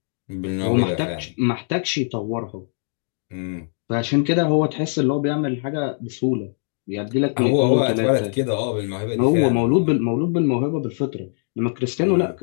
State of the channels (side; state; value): right; silent; digital silence